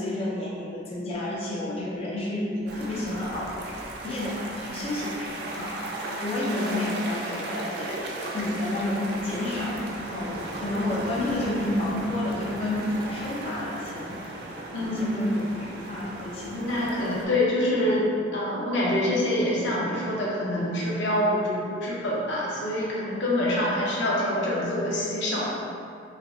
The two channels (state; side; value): normal; both; correlation 0.41